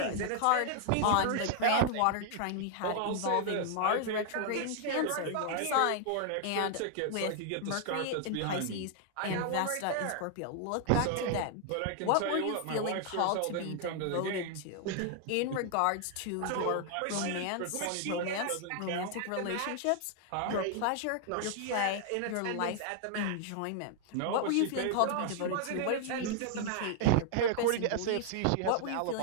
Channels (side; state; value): both; different; correlation 0.00